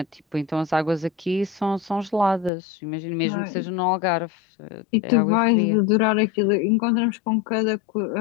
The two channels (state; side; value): drops out; right; at 2.5 s